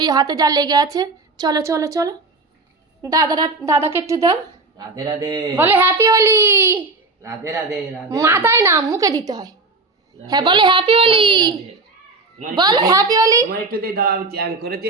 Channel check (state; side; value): quieter; left; 3.5 dB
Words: হাতে যা লেগে আছে। চলো চলো চলো, দাদাকে একটু দাও। রাধে রাধে বলে হ্যাপি হোলি। রাধে রাধে রাধে মাথায় না, মুখে দিতে হয়। হ্যাঁ, বলে হ্যাপি হোলি, বলো হ্যাপি হোলি। তোমার একটু দিয়ে দাও, আমি চ্যান করেছি,